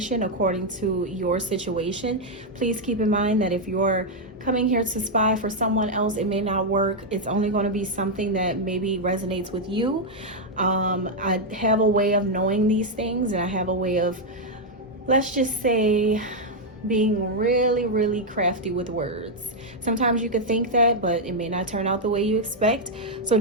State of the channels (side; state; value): both; normal; correlation -0.01